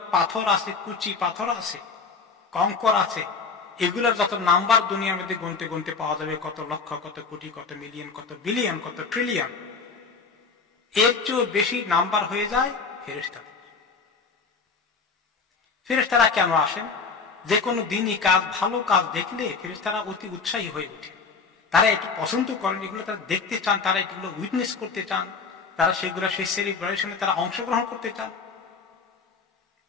পাথর আছে, কুচি পাথর আছে, কঙ্কর আছে, এগুলোর যত নাম্বার দুনিয়ার মধ্যে গুনতে গুনতে পাওয়া যাবে, কত লক্ষ, কত কোটি, কত মিলিয়ন, কত বিলিয়ন, কত ট্রিলিয়ন, এর চেয়ে বেশি নাম্বার হয়ে যায় ফেরেশতাদের। ফেরেশতারা কেন আসেন? যে কোনো দিনই কাজ, ভালো কাজ দেখলে ফেরেশতারা অতি উৎসাহী হয়ে ওঠে, তারা একটু পছন্দ করেন, এগুলো তারা দেখতে চান, তারা এগুলো উইটনেস করতে চান, তারা সেগুলো সেই সেলিব্রেশনে তারা অংশগ্রহণ করতে চান,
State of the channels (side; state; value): right; quieter; 4.9 dB